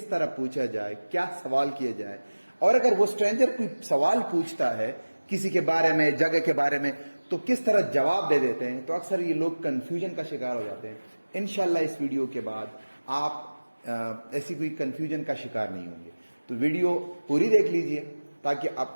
तरह पूछा जाए, क्या सवाल किया जाए। और अगर वो स्ट्रेंजर कोई सवाल पूछता है किसी के बारे में, जगह के बारे में, तो किस तरह जवाब दे देते हैं। तो अक्सर ये लोग कंफ्यूजन का शिकार हो जाते हैं। इंशाल्लाह इस वीडियो के बाद आप ऐसी कोई कंफ्यूजन का शिकार नहीं होंगे। तो वीडियो पूरी देख लीजिए ताकि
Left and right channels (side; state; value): both; inverted; correlation -1.00